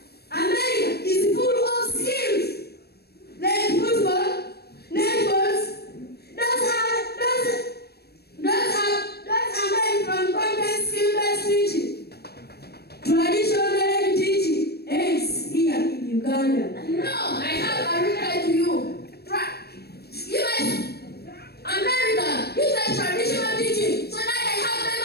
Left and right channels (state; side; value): late; right; 0.47 ms